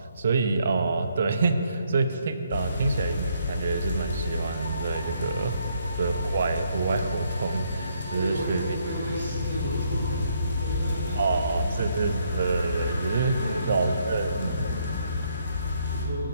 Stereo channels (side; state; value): both; inverted; correlation -0.72